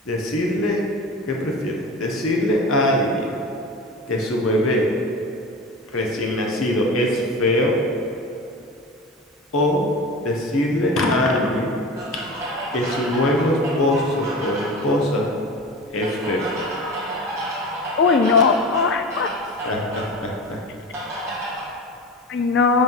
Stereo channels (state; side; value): normal; both; correlation 0.32